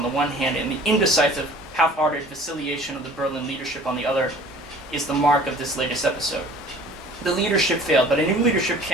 the one hand, and the indecisive, half-hearted vacillation of the Berlin leadership on the other, is the mark of this latest episode. The leadership failed, but a new leadership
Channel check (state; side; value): normal; both; correlation 0.48